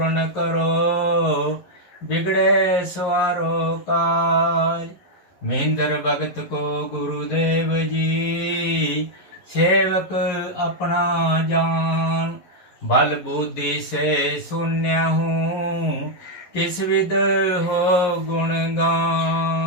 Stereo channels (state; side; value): late; right; 11 ms